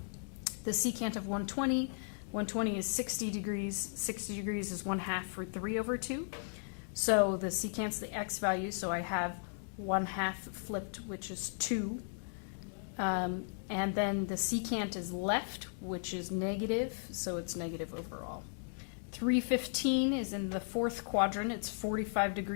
The secant of 120 is 60 degrees. 60 degrees is 1/2 root 3 over 2. So the secant's the x value, so I have 1/2 flipped, which is 2. And then the secant is left, which is negative, so it's negative overall. 315 is in the fourth quadrant. It's 45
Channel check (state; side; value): silent; right; digital silence